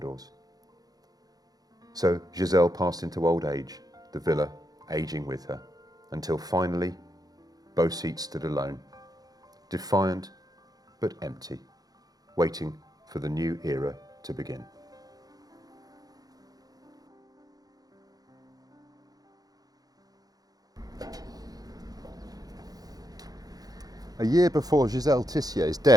So Jizelle passed into old age, the villa aging with her, until finally Beau Site stood alone, defiant but empty, waiting for the new era to begin. A year before Jizelle Tissier's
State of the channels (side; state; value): left; late; 0.18 ms